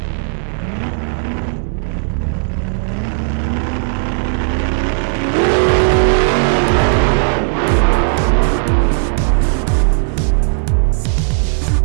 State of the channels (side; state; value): left; silent; 69 dB below the other